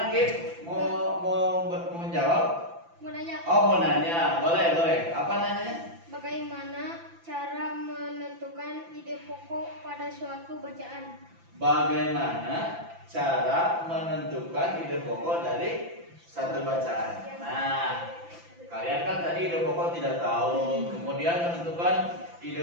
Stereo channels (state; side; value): late; left; 5.9 ms